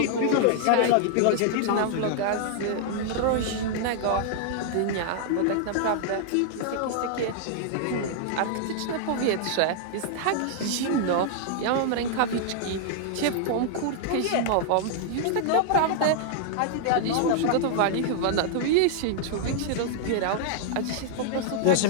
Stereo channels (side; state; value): both; different; correlation -0.01